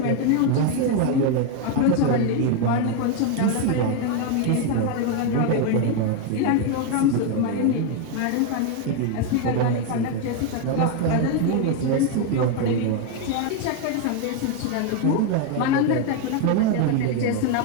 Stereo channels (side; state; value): both; different; correlation 0.01